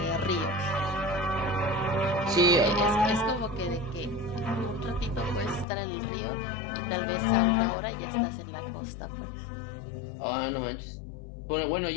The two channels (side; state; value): right; drops out; at 5.7 s